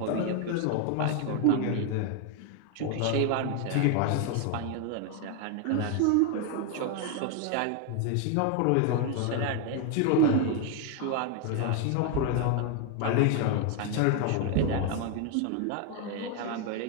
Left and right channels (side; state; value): both; different; correlation 0.00